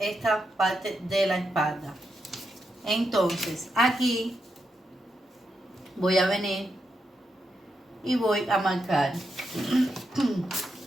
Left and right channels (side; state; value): both; normal; correlation 0.84